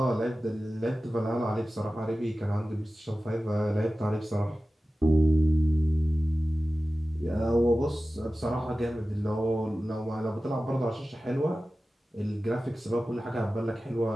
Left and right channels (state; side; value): normal; both; correlation 0.95